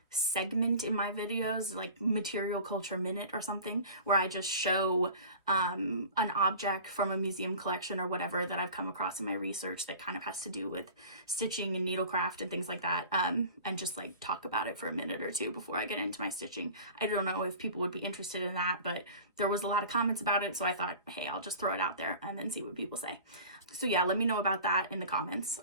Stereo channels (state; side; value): inverted; both; correlation -0.40